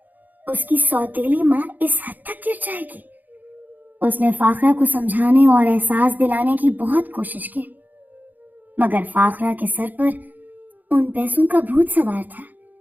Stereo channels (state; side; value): late; left; 0.083 ms